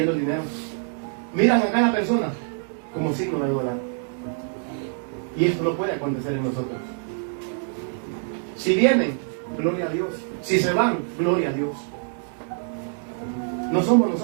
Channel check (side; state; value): left; silent; 62 dB below the other